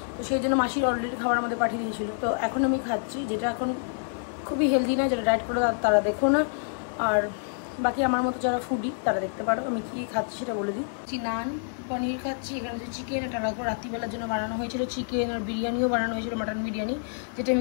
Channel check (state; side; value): silent; right; digital silence